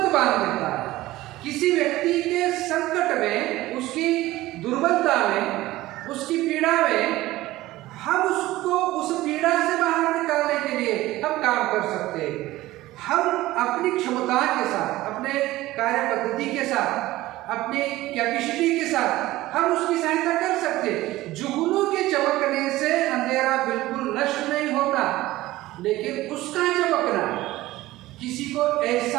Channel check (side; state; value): left; quieter; 17.1 dB